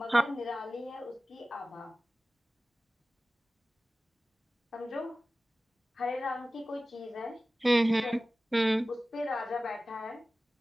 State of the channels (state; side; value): normal; both; correlation 0.96